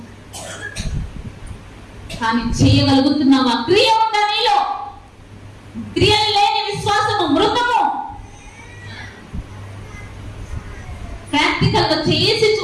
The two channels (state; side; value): identical; both; correlation 1.00